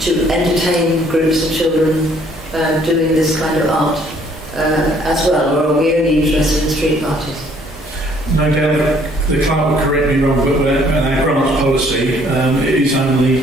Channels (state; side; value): normal; both; correlation 0.62